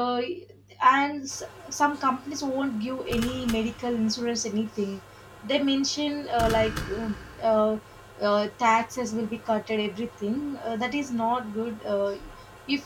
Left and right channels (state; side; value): identical; both; correlation 1.00